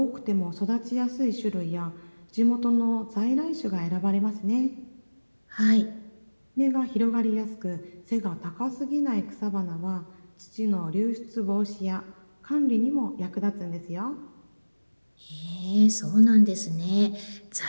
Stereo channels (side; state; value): both; inverted; correlation -1.00